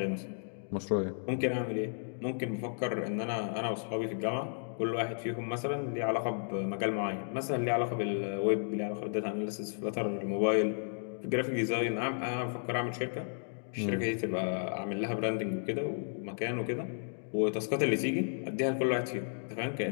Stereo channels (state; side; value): silent; right; digital silence